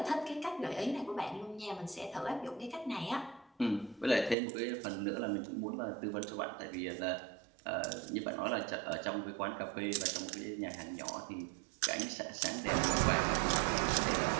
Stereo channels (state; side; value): drops out; left; at 4.4 s